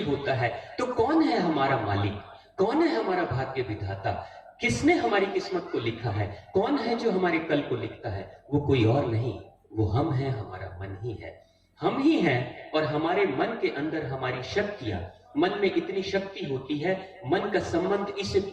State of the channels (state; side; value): identical; both; correlation 1.00